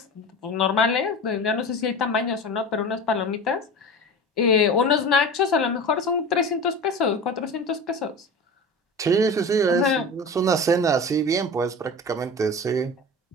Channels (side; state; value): both; normal; correlation 0.32